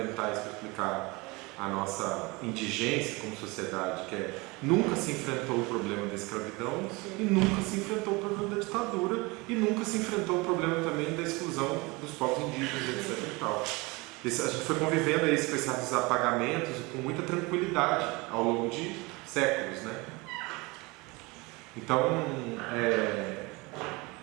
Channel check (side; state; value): left; quieter; 25.0 dB